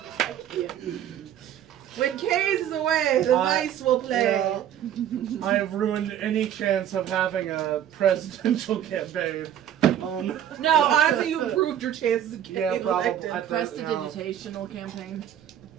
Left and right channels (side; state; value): left; quieter; 10.4 dB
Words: When Kaze is away, the mice will play. Yeah. I have ruined any chance of having a presidential campaign. No, honestly, you improved your chances of getting Yeah, probably. elected. I- Prestidigitational campaign